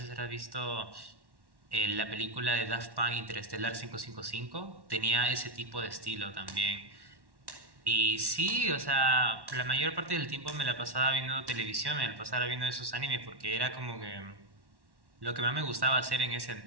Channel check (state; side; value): late; left; 1.1 ms